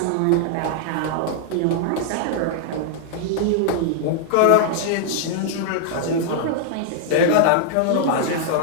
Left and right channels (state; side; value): different; both; correlation -0.01